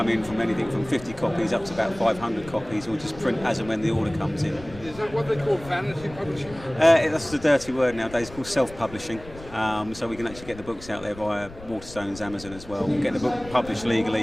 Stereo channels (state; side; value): noise; left; rumble, 17 dB below the sound